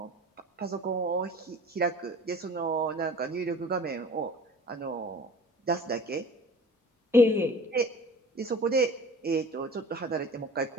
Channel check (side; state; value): both; normal; correlation 0.43